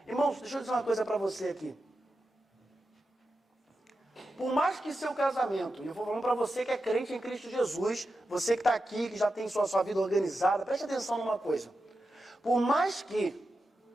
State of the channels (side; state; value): both; normal; correlation 0.90